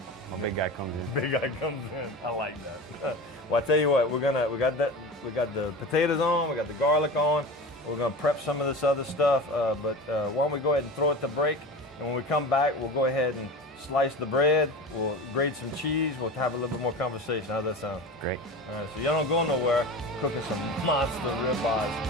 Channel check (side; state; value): both; normal; correlation 0.31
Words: my big guy comes in. Big guy comes in. I like that. Well, I tell you what, we got the potatoes on, we got the garlic on. We're gonna prep some of this other stuff, but why don't we go ahead and throw it to break? And when we come back, we'll go ahead and slice the bread. We'll grate some cheese. We'll have a little bit more conversation. How's that sound? Great. All right, so y'all don't go nowhere. Cooking some monster ribeyes,